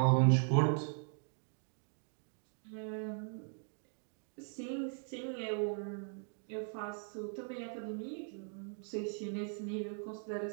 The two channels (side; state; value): left; silent; 52 dB below the other